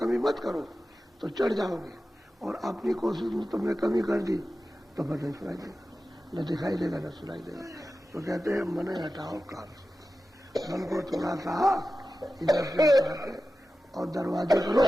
मत करो तो चढ़ जाओगे, और अपनी कोशिश में तुमने कमी कर दी तो भजन सुनाई देगा, न दिखाई देगा न सुनाई देगा। तो कहते हैं मन हटाओ काम से, मन को थोड़ा सा इधर से हटाते और दरवाजे करो,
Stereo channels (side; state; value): both; normal; correlation 0.94